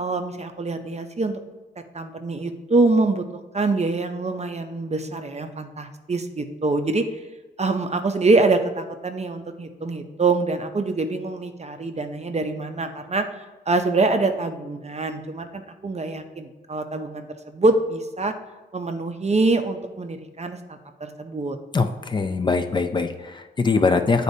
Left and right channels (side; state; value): both; normal; correlation 0.59